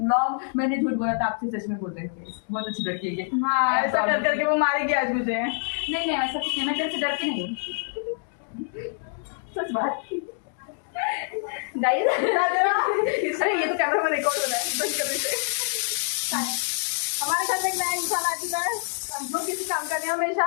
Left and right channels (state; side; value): silent; right; digital silence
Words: मैंने झूठ बोला था, आपसे सच में बोल रही हूँ, बहुत अच्छी लड़की है ये। हाँ, ऐसा कर करके वो मारेगी आज मुझे। नहीं नहीं ऐसा कुछ नहीं, मैं तेरे से डरती नहीं हूँ। सच बात गाइस। अरे ये तो कैमरा में रिकॉर्ड हो रहा है, बंद कर देते। हमारे घर में एक नया इंसान आ चुका है, जो किसी काम का नहीं, हमेशा